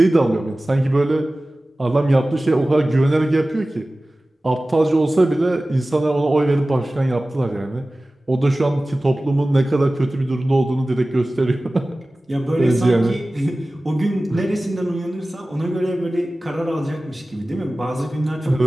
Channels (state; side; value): normal; both; correlation 0.97